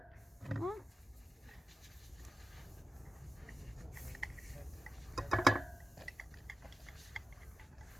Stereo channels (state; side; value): normal; both; correlation 0.92